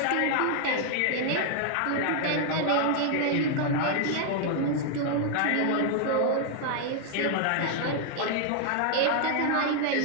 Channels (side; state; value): both; different; correlation 0.00